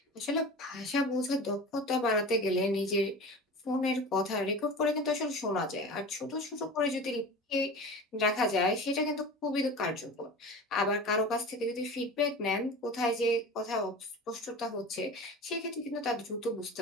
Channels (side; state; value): both; normal; correlation 0.34